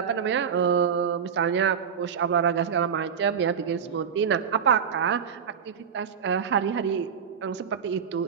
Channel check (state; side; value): quieter; left; 7.1 dB